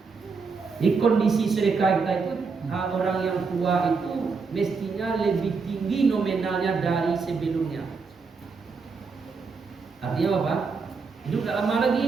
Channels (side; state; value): left; quieter; 4.9 dB